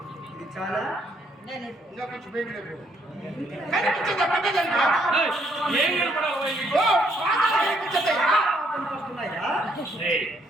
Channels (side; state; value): both; normal; correlation 0.70